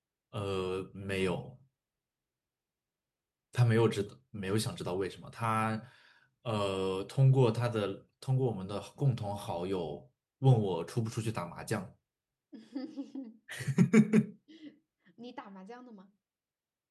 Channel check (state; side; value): identical; both; correlation 1.00